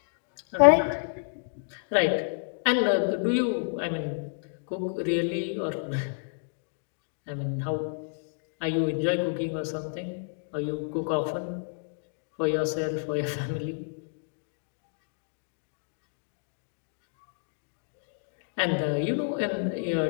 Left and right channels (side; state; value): right; silent; digital silence